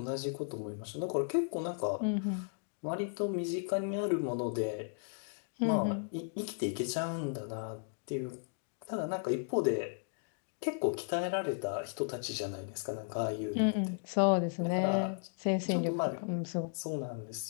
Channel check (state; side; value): silent; right; digital silence